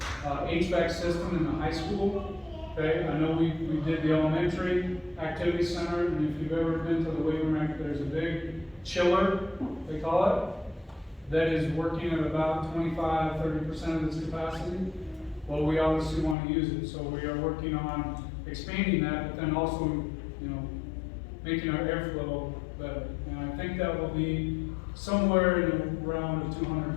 HVAC system in the high school. Okay, I know we did the elementary activity center, and if you've ever been to the Wakefield, there's a big chiller, they call it, that is working at about 25–30% of its capacity. Well, we obviously want to use it, so we are working on expanding that, but then also, making our airflow better. And I think that will be somewhere in around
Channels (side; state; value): right; drops out; at 16.4 s